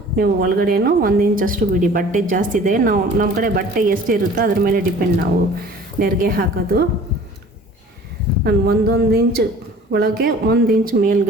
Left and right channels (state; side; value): normal; both; correlation 0.47